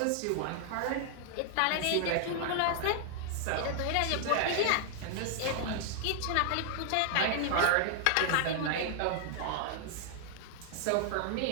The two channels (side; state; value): both; different; correlation 0.00